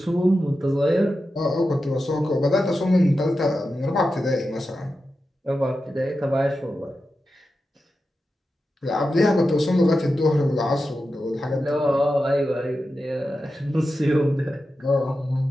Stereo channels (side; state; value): both; normal; correlation 0.91